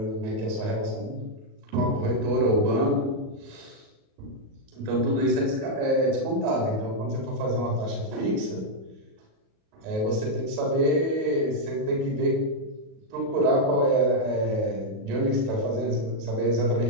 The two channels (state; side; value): late; left; 37 ms